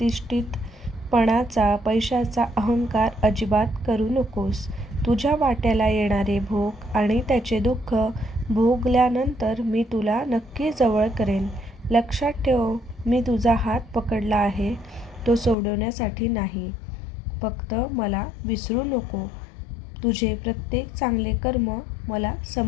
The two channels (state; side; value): drops out; right; at 15.6 s